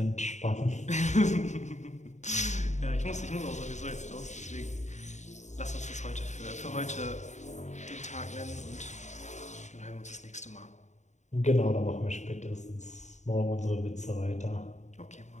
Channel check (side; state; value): right; late; 0.34 ms